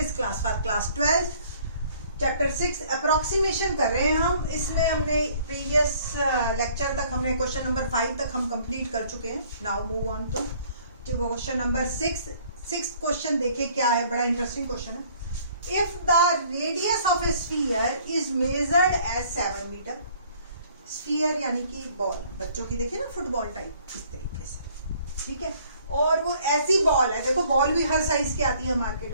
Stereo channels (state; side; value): inverted; both; correlation -0.58